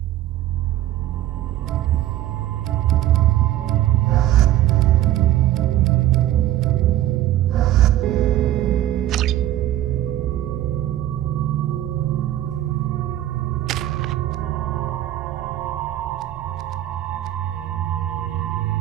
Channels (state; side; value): quieter; left; 13.4 dB